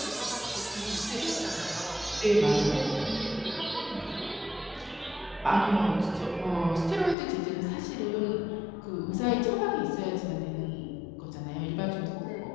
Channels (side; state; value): right; drops out; at 7.2 s